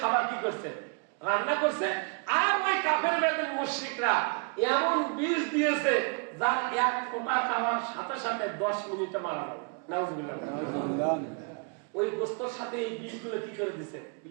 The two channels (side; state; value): left; quieter; 37.1 dB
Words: কি করছে? রান্না করছে। আর ওই কাফের বেদিন মুশরিকরা এমন বিষ দিয়েছে যার এক ফোঁটা খাওয়ার সাথে সাথে 10 মিনিটে মারা যাবে। নাউজুবিল্লাহ। ওই গোস্তর সাথে এই বিষগুলো কি করে দিছে?